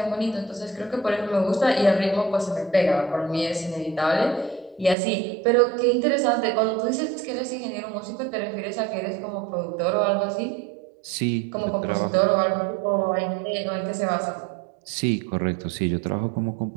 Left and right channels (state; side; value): drops out; left; at 5.0 s